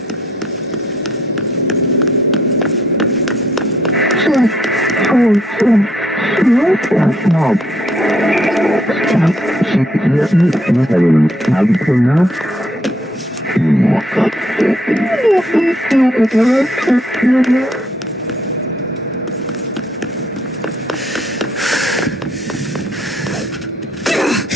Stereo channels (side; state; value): both; normal; correlation 0.68